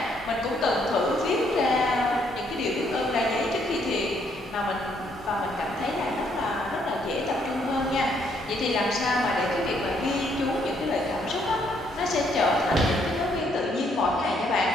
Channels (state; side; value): normal; both; correlation 0.70